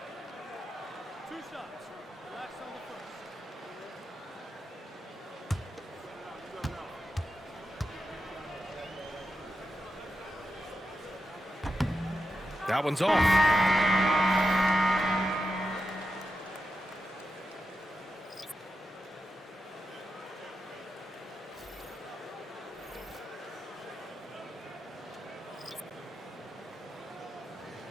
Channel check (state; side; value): normal; both; correlation 0.88